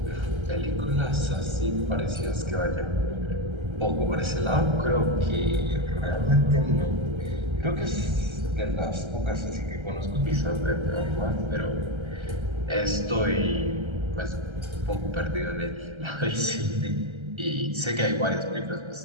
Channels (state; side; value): late; left; 1.3 ms